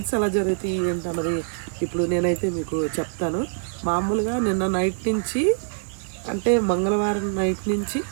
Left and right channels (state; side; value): silent; left; 62 dB below the other